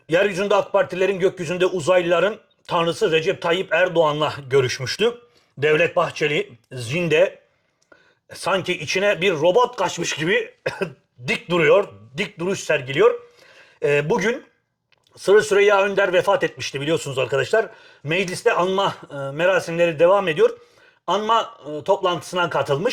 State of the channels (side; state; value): both; identical; correlation 1.00